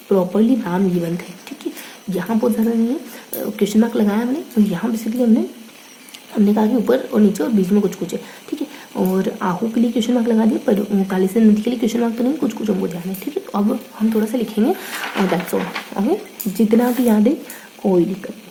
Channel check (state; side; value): identical; both; correlation 1.00